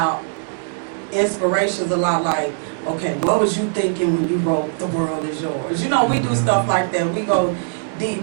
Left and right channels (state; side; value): silent; left; 62 dB below the other